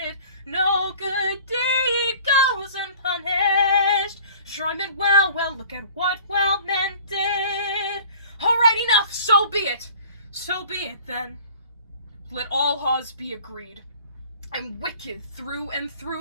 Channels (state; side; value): inverted; both; correlation -0.47